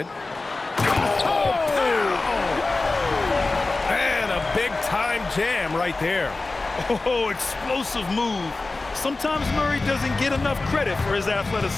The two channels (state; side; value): quieter; right; 3.4 dB